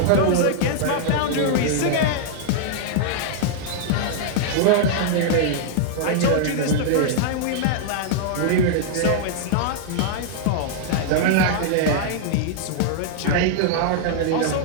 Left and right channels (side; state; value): both; different; correlation -0.01